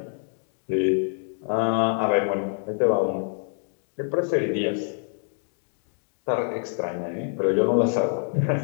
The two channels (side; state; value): right; silent; 57 dB below the other